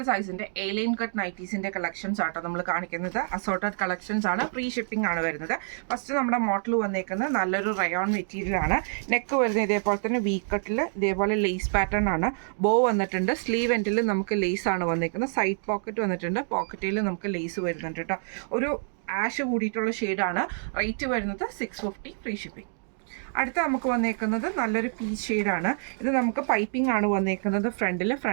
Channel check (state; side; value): silent; left; digital silence